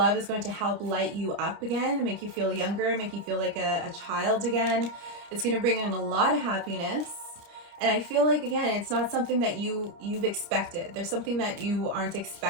is going to help light you up again, make you feel younger, make you feel like a child again. It's going to bring in a lot of happiness. And I feel like, again, it's not something that you've expected. There's something that you aren't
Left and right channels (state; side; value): late; left; 29 ms